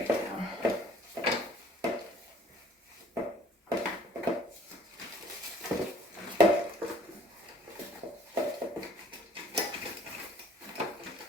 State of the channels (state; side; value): normal; both; correlation 0.54